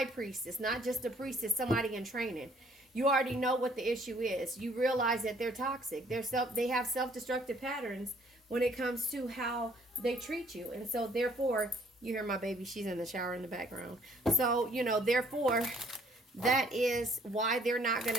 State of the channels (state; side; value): normal; both; correlation 0.61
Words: priestess, not just a priestess, somebody in training. You already know what the issue is. You realize that they're toxic. They have self-destructive patterns when it comes to how they treat you. And so therefore, you hear my baby, she's in the shower in the background. So, you know, therefore, that is why they're not going